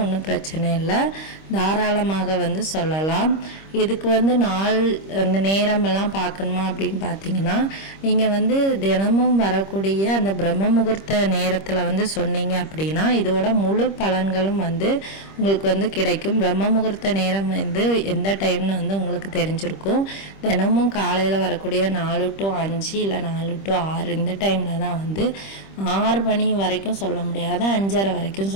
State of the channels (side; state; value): right; late; 25 ms